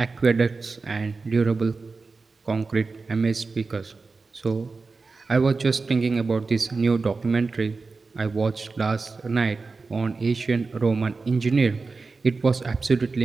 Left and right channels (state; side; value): quieter; left; 4.1 dB